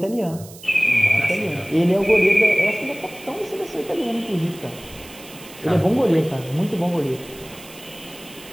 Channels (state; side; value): noise; right; hiss, 19 dB below the sound